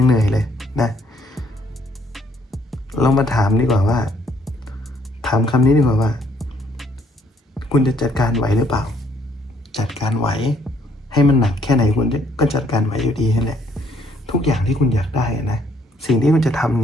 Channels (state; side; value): normal; both; correlation 0.67